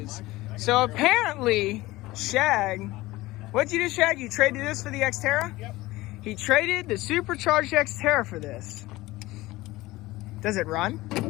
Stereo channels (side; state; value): right; quieter; 18.9 dB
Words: So apparently, Shag, what'd you do, Shag? You traded this for the Xterra? Yep. He traded the supercharged Xterra for this. Does it run?